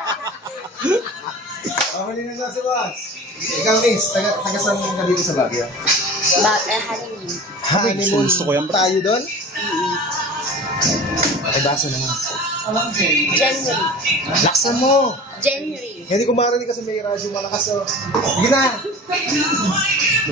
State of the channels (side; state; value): both; normal; correlation 0.38